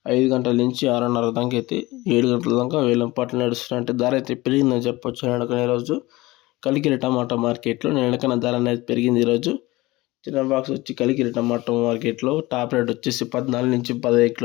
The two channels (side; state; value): right; quieter; 20.2 dB